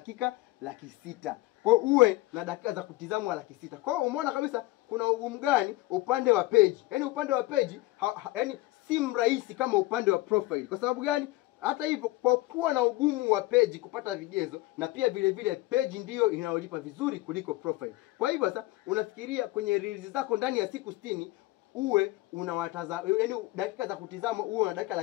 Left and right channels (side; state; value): right; quieter; 19.1 dB